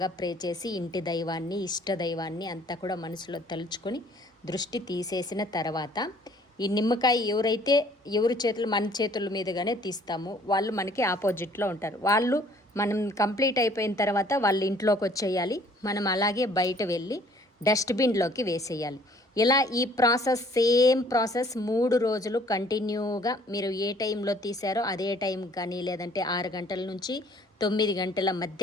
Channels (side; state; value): both; normal; correlation 0.57